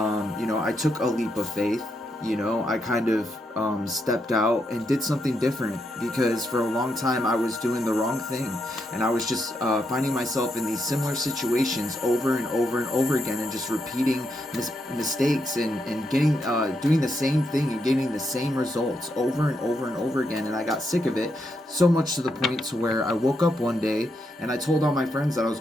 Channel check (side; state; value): both; normal; correlation 0.81